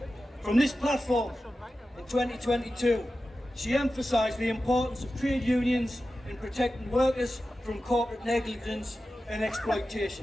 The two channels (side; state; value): both; normal; correlation 0.93